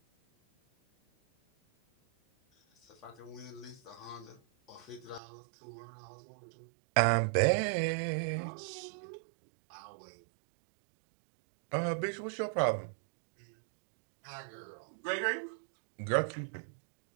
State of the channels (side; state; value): left; drops out; at 5.2 s